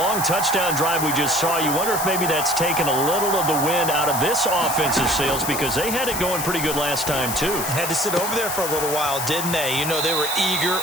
touchdown drive we just saw, you wonder if maybe that's taken a little of the wind out of this offense's sails because they had it going pretty good last time too. Had to sit over there for a little while, didn't they? You know, they were eager,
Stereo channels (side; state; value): left; noise; hiss, 4 dB below the sound